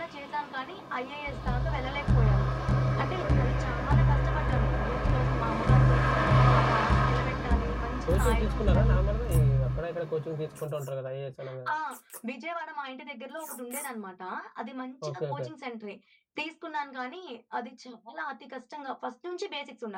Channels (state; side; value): identical; both; correlation 1.00